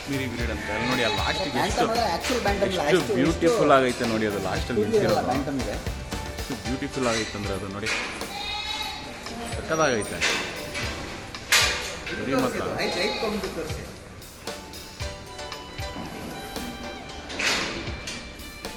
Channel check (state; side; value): identical; both; correlation 1.00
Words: ಬ್ರೀಡ್ ಅಂತ. ಅಲ್ಲಿ ನೋಡಿ, ಅಲ್ಲಿ ಲಾಸ್ಟಿಗೆ ಎಷ್ಟು ಬ್ಯೂಟಿಫುಲ್ ಆಗೈತೆ ನೋಡಿ. ಅದು ಲಾಸ್ಟಲ್ಲಿ ನಿಂತಿರೋದು ಬ್ಯಾಂಟಮ್ ಇದೆ. ಎಷ್ಟು ಬ್ಯೂಟಿಫುಲ್ ಆಗೈತೆ ಅಂದರೆ ಅದು ನೋಡಿ, ಸಕ್ಕದಾಗೈತೆ. ಸರಿ ಮತ್ತು